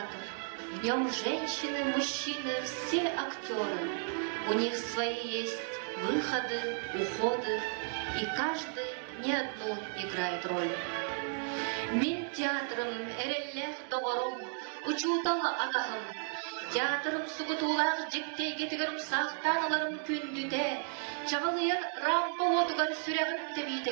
В нем женщины, мужчины, все актеры. У них свои есть выходы, уходы, и каждый не одну играет роль. Мин театрым эреллех доғырым, учуталы атағым. Театрым сугутулар жіктей кетігірім сақтаныларым күндіде. Чағылыяр рампа отығар сүрәғін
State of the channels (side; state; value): left; silent; 55 dB below the other